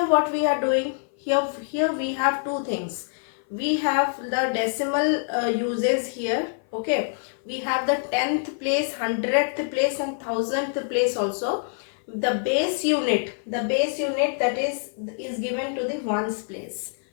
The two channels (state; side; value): silent; right; 57 dB below the other